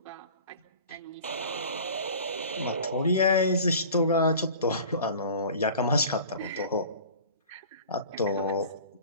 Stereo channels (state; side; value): inverted; both; correlation -0.42